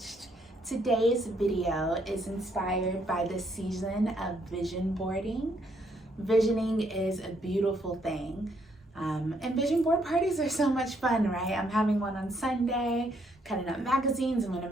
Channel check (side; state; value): both; normal; correlation 0.71